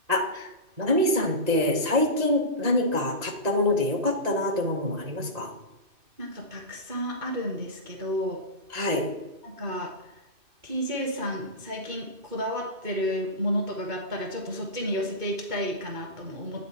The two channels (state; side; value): late; left; 2.6 ms